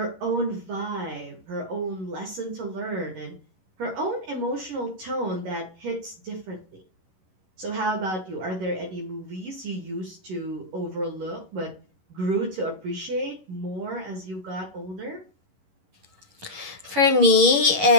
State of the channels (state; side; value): late; left; 11 ms